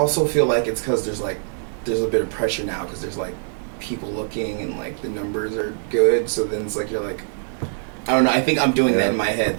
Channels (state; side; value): silent; left; digital silence